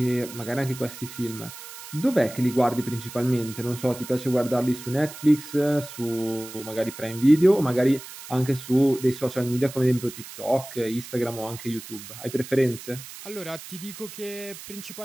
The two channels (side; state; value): right; noise; hiss, 14 dB below the sound